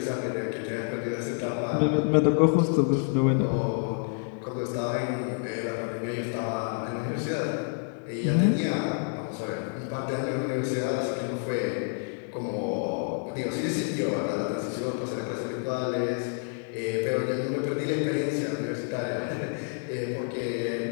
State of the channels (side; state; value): right; silent; 58 dB below the other